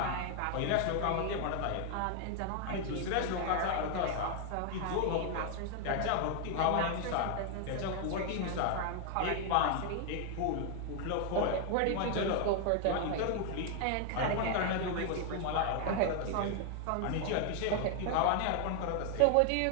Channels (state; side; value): different; both; correlation 0.00